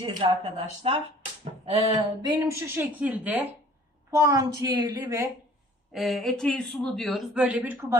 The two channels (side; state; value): both; normal; correlation 0.52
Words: arkadaşlar. Benim şu şekilde puantiyeli ve eteği sulu diyoruz. Böyle bir